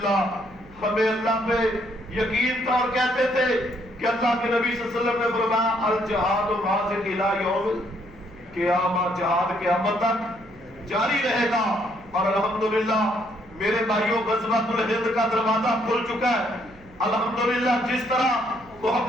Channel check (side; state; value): right; noise; hum, 24 dB below the sound